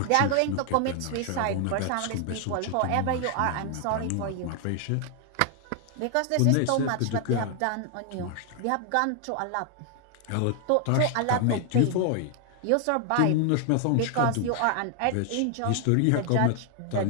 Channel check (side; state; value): both; different; correlation 0.00